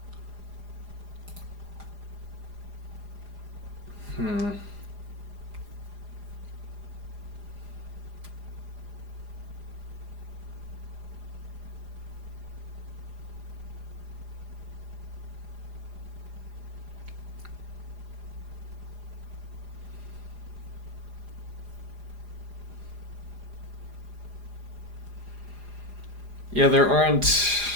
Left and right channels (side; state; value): left; late; 4.9 ms